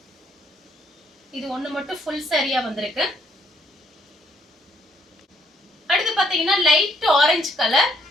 இது ஒண்ணு மட்டும் ஃபுல் சாரியா வந்திருக்கு. அடுத்து பாத்தீங்கன்னா லைட் ஆரஞ்சு கலர்.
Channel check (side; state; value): both; normal; correlation 0.69